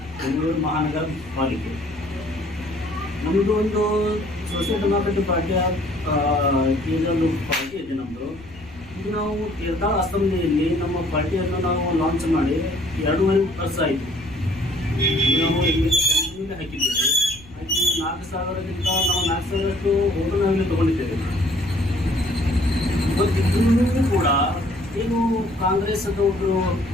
ಬೆಂಗಳೂರು ಮಹಾನಗರ ಪಾಲಿಕೆ. ನಮ್ಮದು ಒಂದು ಸೋಷಿಯಲ್ ಡೆಮೋಕ್ರೆಟಿಕ್ ಪಾರ್ಟಿಯ ಇದೊಂದು ಪಾರ್ಟಿ ಇದೆ ನಮ್ಮದು. ಇದು ನಾವು ತೀರ್ಥಾಳ ಅಸೆಂಬ್ಲಿಯಲ್ಲಿ ನಮ್ಮ ಪಾರ್ಟಿಯನ್ನು ನಾವು ಲಾಂಚ್ ಮಾಡಿ 2.5 ವರ್ಷ ಆಯಿತು. ನಾವು ಇಲ್ಲಿ ಹಾಕಿದ್ದೇವೆ. ಹಾಕಿ 4,000ಕ್ಕಿಂತ ನಾವು 4,000ರಷ್ಟು ಓಟು ನಾವಿಲ್ಲಿ ತೊಗೊಂಡಿದ್ದೇವೆ. ಇವತ್ತಿಗೂ ಕೂಡ ಏನು ಕಾಂಗ್ರೆಸ್ ಒಬ್ಬರು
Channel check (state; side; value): noise; left; rumble, 21 dB below the sound